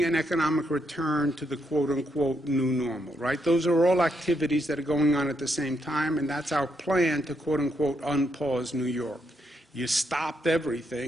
an economic return to the quote-unquote new normal, right? Those are all activities that are going on at the same time, and that's our plan to quote-unquote unpause New York. You stopped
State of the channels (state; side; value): normal; both; correlation 0.78